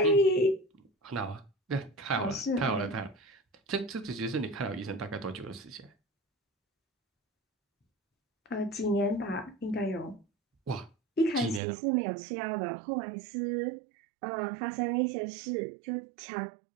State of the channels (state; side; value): drops out; left; at 11.6 s